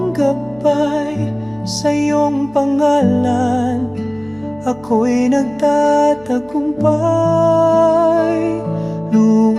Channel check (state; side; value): noise; right; hum, 26 dB below the sound